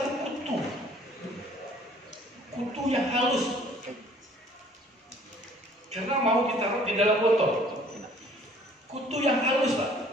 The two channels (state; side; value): normal; both; correlation 0.55